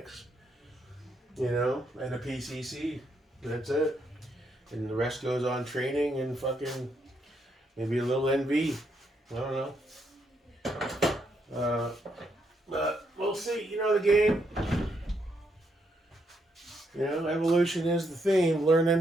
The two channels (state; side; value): normal; both; correlation 0.77